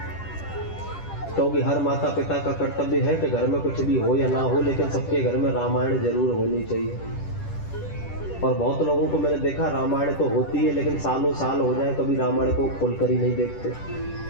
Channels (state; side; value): late; right; 10 ms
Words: क्योंकि हर माता पिता का कर्तव्य है कि घर में कुछ भी हो या ना हो, लेकिन सबके घर में रामायण जरूर होनी चाहिए। और बहुत लोगों को मैंने देखा, रामायण तो होती है लेकिन सालों साल हो जाए कभी रामायण को खोलकर ही नहीं देखते।